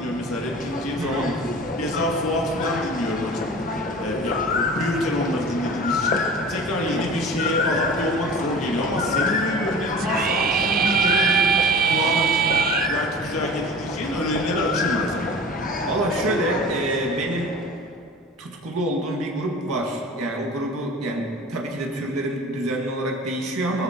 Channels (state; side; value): normal; both; correlation 0.39